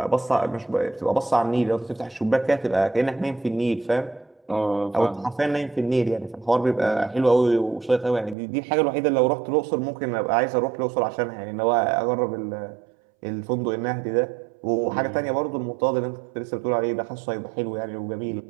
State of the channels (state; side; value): drops out; left; at 8.3 s